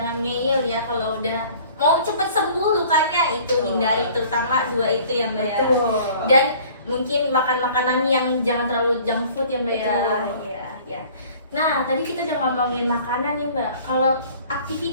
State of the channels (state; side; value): inverted; both; correlation -0.51